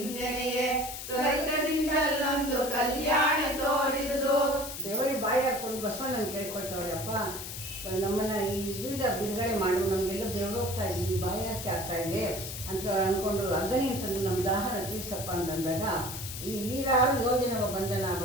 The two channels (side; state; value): left; noise; hiss, 8 dB below the sound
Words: ತ್ವರಿತದಿಂದಲ್ಲೊಂದು ಕಲ್ಯಾಣ ತೋರಿದುದು. ದೇವರಿ ಬಾಯಿ ಹಾಕೊಂಡು ಬಸವಣ್ಣನ ಕೇಳ್ಕೊಳ್ತವ್ರೆ, ಅಪ್ಪ ನಮ್ಮನ್ನು ಇದರಿಂದ ಬಿಡುಗಡೆ ಮಾಡು, ನಮಗೆಲ್ಲ ಬೆವರೋಗ್ತಾ ಇದ್ದೀವಿ, ಬಾಯಿ ಹಾಕಿ ಆಗ್ತಾ ಇದೆ ಅಂತ ಅಂದ್ಕೊಂಡು ಅಗ್ನಿ ಅಂತಂದು ನಮ್ಮ ದಾಹನ ತೀರ್ಸಪ್ಪ ಅಂತಂದಾಗ ಈ ನೀರಾರು ಯೋಜನವ ಬಂಧನ